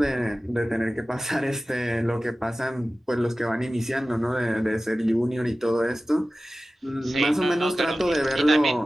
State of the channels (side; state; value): both; normal; correlation 0.96